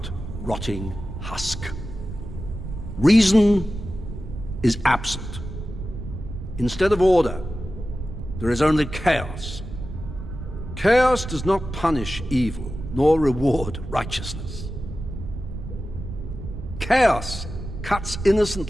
rotting husk. Reason is absent. Instead of order, there is only chaos. Chaos does not punish evil, nor reward righteousness. Chaos cuts innocent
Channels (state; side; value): noise; right; rumble, 9 dB below the sound